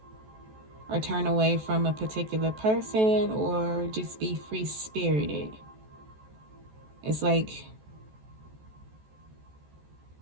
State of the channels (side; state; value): left; late; 14 ms